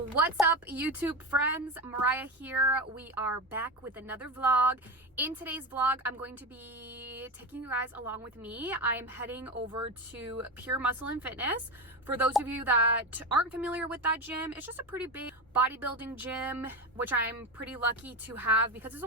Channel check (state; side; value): normal; both; correlation 0.20